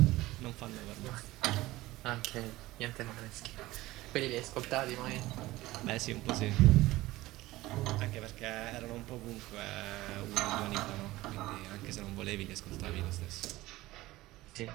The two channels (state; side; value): quieter; left; 18.0 dB